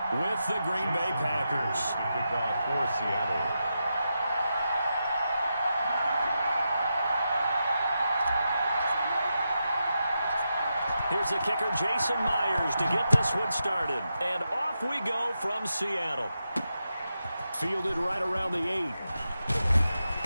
with the Green Bay Packers. Kickoff for Seattle. Here's the kicker, Jason Myers, to get this one started. And off we go from Seattle. Fielded right around the 8.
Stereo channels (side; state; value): both; inverted; correlation -0.87